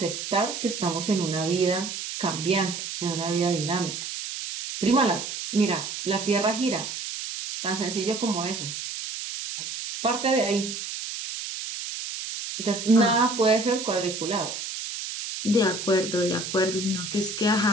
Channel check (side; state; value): right; noise; hiss, 6 dB below the sound